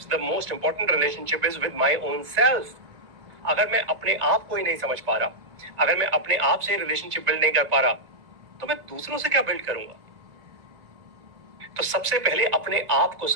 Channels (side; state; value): left; late; 2.2 ms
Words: the most important relationship is with my own self. अगर मैं अपने आप को ही नहीं समझ पा रहा, अगर मैं अपने आप से रिलेशनशिप बिल्ड नहीं कर पा रहा, तो मैं दूसरों से क्या बिल्ड करूंगा? तो सबसे पहले अपने आप को